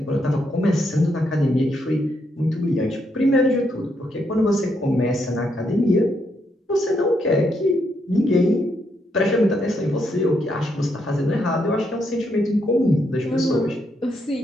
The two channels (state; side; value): normal; both; correlation 0.77